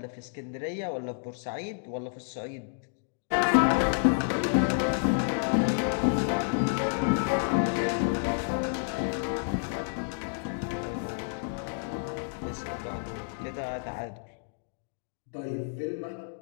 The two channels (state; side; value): silent; right; digital silence